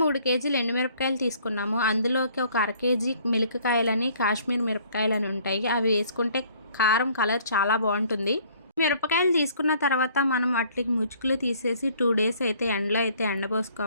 3 కేజీలు ఎండుమిరపకాయలు తీసుకున్నాము. అందులోకి ఒక 1/2 కేజీ మిరపకాయలని, కాశ్మీర్ మిరపకాయలని ఉంటాయి. అవి వేసుకుంటే కారం కలర్ చాలా బాగుంటుంది. మిరపకాయలు తీసుకున్న తర్వాత మనం వాటికి ముచ్చుకులు తీసేసి 2 డేస్ అయితే ఎండలో అయితే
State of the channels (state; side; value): inverted; both; correlation -0.58